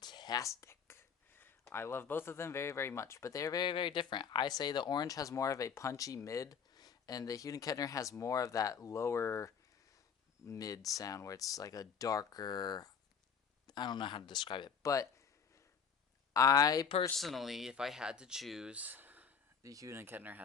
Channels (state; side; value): quieter; right; 6.8 dB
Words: I love both of them very, very much, but they're very, very different. I say the orange has more of a punchy mid, and the Hughes Kettner has more of that lower mid sound where it's like a darker. I don't know how to describe it, but I personally, if I had to choose, the Hughes Kettner